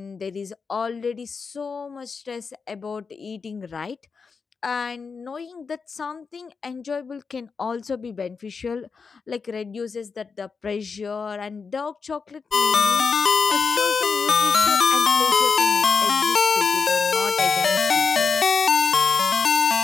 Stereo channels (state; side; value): quieter; right; 5.2 dB